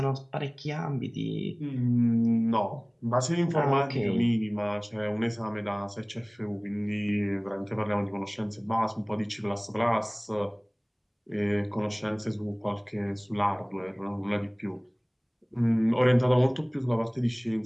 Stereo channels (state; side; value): identical; both; correlation 1.00